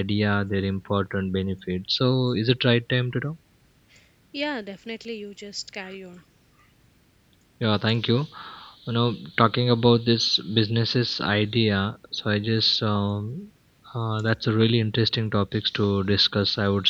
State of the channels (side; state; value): both; identical; correlation 1.00